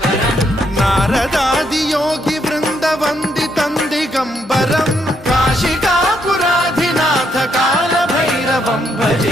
नारदादि योगी वृंद वंदितं दिगंबरं काशिकापुराधिनाथ काल भैरवं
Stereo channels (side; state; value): both; normal; correlation 0.75